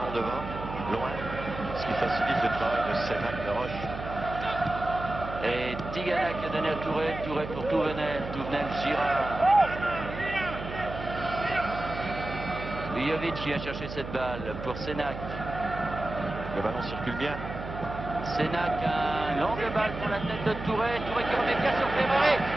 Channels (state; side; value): noise; right; hum, 9 dB below the sound